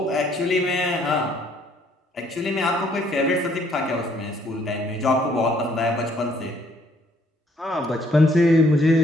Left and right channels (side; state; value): both; normal; correlation 0.65